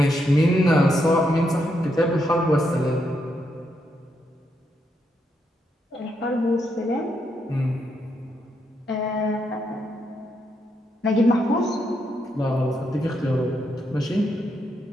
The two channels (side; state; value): both; normal; correlation 0.79